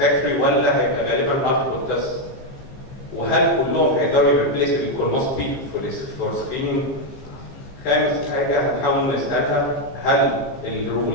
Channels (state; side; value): late; right; 15 ms